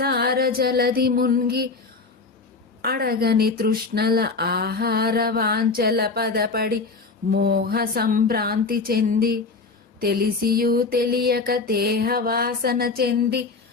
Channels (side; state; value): right; quieter; 4.1 dB